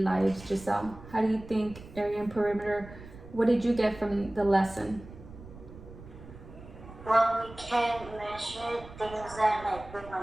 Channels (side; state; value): right; noise; rumble, 17 dB below the sound